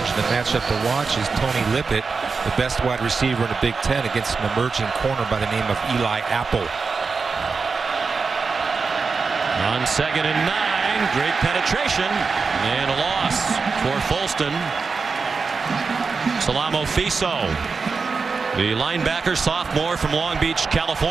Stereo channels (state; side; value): quieter; left; 4.8 dB